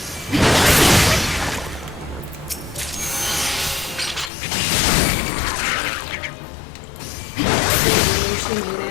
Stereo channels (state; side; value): drops out; right; at 4.3 s